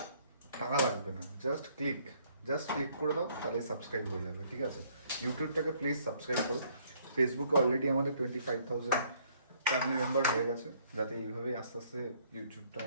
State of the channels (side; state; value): both; inverted; correlation -0.64